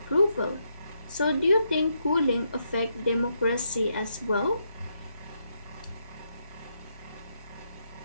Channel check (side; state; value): both; inverted; correlation -0.79